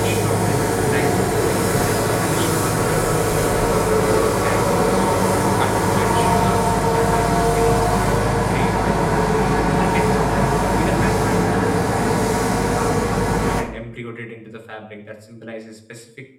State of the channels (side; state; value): both; identical; correlation 1.00